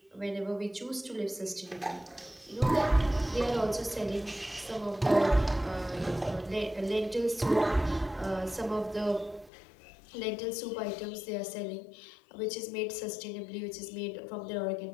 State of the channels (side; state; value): right; drops out; at 9.5 s